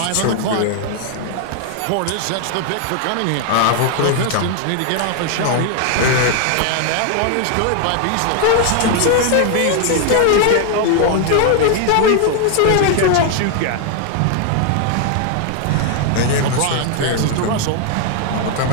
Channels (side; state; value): both; different; correlation 0.00